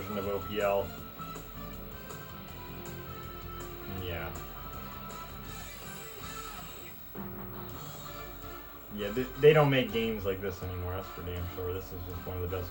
of OPL, yeah. Yeah, they don't make games like this anymore, that's for damn sure. This is just one of the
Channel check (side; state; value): both; identical; correlation 1.00